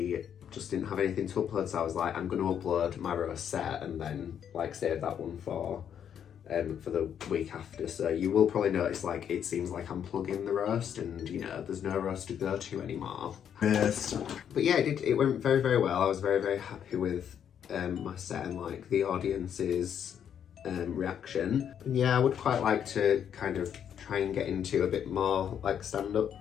just didn't have anything to upload, so I was like, I'm going to upload my roast set and then like save that one for the week after. So you will probably notice like it seems like I'm plugging the roast, and you know there's no roast to go to anymore. Yes. But yeah, it went very, very well. I was very, very happy with my set and like the audience's reaction. And yeah, I would quite like to kind of try and get into a bit more like stand-up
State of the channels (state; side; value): quieter; right; 8.8 dB